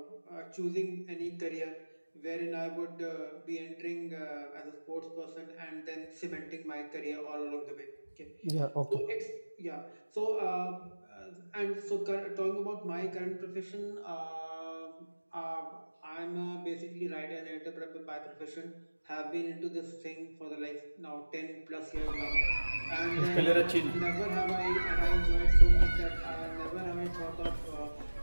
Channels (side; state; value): both; inverted; correlation -1.00